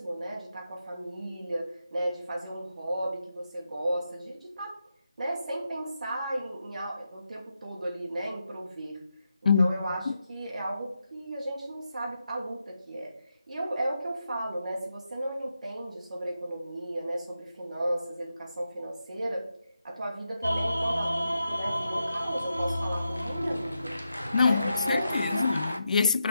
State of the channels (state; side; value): inverted; both; correlation -0.86